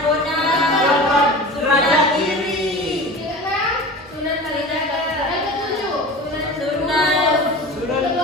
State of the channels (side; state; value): both; normal; correlation 0.34